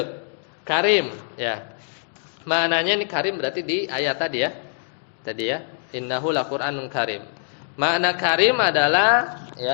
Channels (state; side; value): silent; right; digital silence